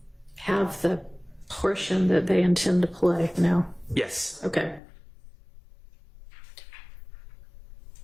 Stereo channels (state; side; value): drops out; right; at 4.8 s